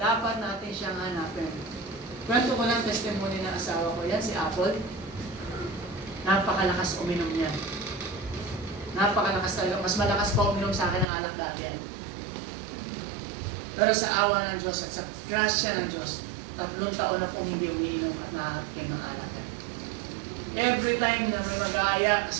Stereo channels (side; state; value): left; drops out; at 11.1 s